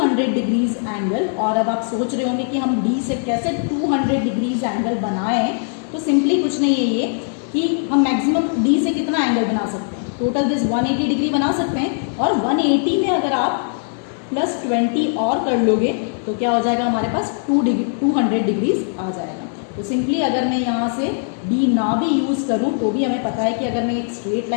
degrees angle, और अब आप सोच रहे होंगे कि हम डी से कैसे 200 डिग्रीज एंगल बनाएं, तो सिंपली कुछ नहीं है ये कि हम मैक्सिमम डी से कितना एंगल बना सकते हैं, टोटल दिस 180 डिग्री बना सकते हैं, और 180 में अगर आप +20 और कर लोगे तो क्या हो जाएगा, हमारे पास 200 डिग्रीज आ जाएगा। तो सिंपली अगर मैं यहाँ से डी ना भी यूज़ करूँ तो भी हमें पता है कि अगर मैं एक स्ट्रेट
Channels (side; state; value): right; silent; digital silence